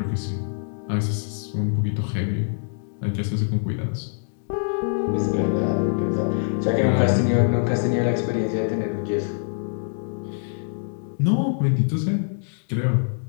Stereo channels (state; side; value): silent; right; digital silence